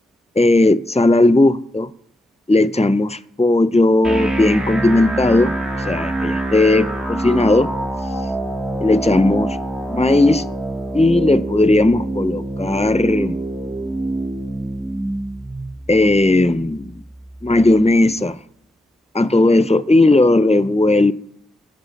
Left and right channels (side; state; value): both; normal; correlation 0.84